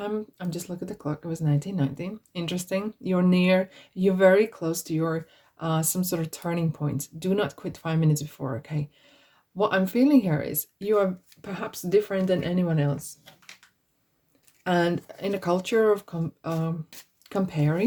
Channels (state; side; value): identical; both; correlation 1.00